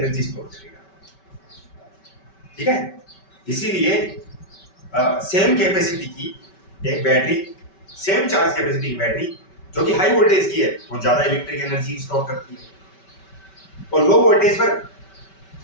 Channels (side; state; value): right; late; 5.2 ms